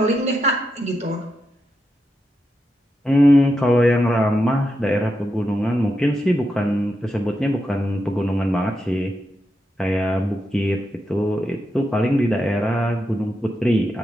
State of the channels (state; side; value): normal; both; correlation 0.85